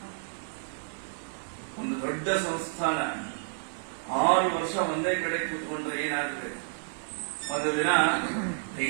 ಒಂದು ದೊಡ್ಡ ಸಂಸ್ಥಾನ 6 ವರ್ಷ ಒಂದೇ ಕಡೆ ಕೂತ್ಕೊಂಡ್ರೆ ಏನಾಗುತ್ತೆ? ಒಂದು ದಿನ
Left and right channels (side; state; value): left; silent; digital silence